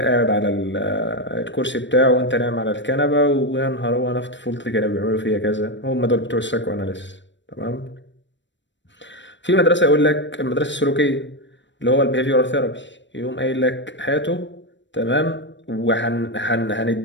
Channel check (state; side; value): late; right; 0.53 ms